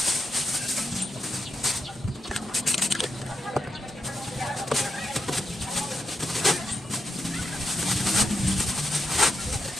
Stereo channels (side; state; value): both; normal; correlation 0.85